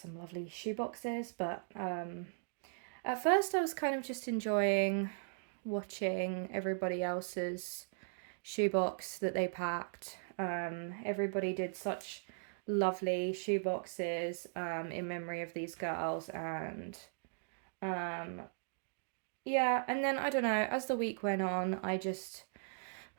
lovely shoe boxes, but at first I was kind of just enjoying watching everybody else's shoebox that they packed. Everybody did such lovely shoe boxes in memory of these girls, and yeah, and then I don't know, as the week went on, I just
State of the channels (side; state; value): left; silent; digital silence